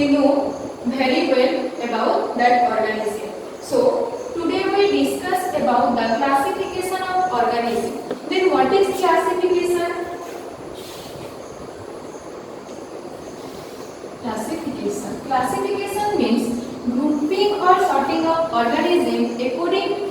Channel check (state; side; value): identical; both; correlation 1.00